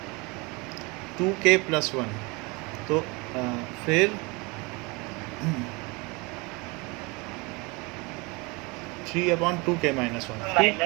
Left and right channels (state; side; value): quieter; left; 26.9 dB